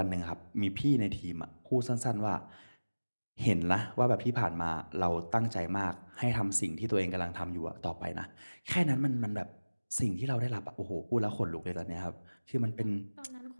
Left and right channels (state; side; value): inverted; both; correlation -1.00